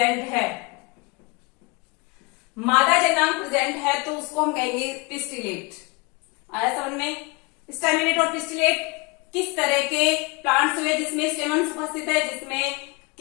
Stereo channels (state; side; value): quieter; right; 26.2 dB